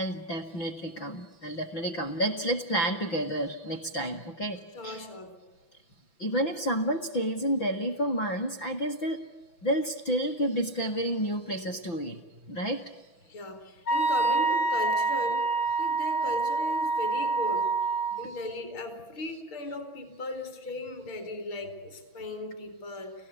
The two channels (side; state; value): right; late; 6.0 ms